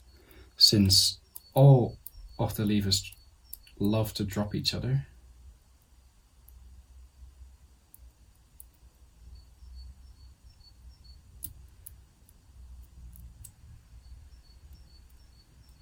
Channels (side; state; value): both; identical; correlation 1.00